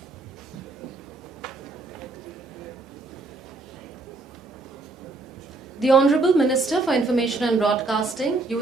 The Honourable Minister for Information and Broadcasting,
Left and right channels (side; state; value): left; quieter; 3.4 dB